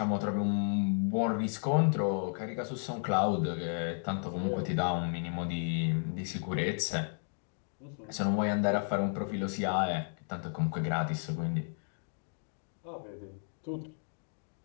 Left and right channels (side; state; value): right; silent; digital silence